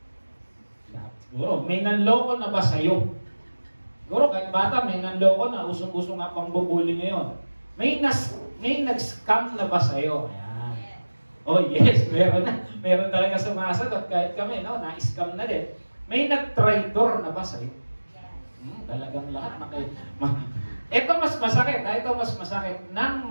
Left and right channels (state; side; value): inverted; both; correlation -1.00